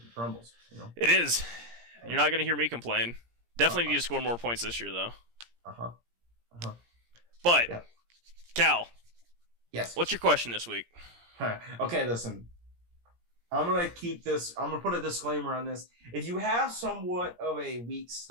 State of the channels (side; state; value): left; late; 17 ms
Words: crumbles. It is. You're not gonna hear me complain. Definitely need to score more points this year, though. But yeah. Cal, yes. What's your question this week? Okay, listen. I'm going to put a disclaimer on this. If you have somewhat of a weak